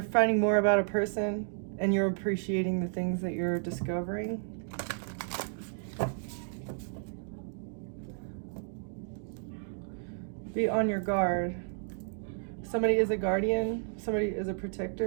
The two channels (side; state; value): left; silent; digital silence